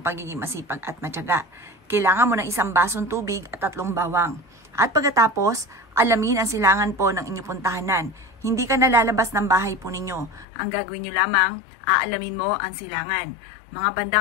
pagiging masipag at matyaga. Kailangan mo ng 1 basong tubig at 3 bawang. At pagkatapos, alamin ang silangan po ng inyong puntahanan. Hindi ka nalalabas ng bahay po ninyo. Ang gagawin nyo lamang, aalamin mo ang silangan. Mga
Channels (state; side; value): drops out; right; at 10.5 s